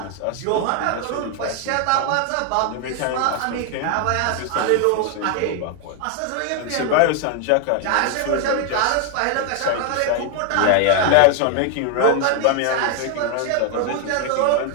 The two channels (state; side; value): different; both; correlation 0.00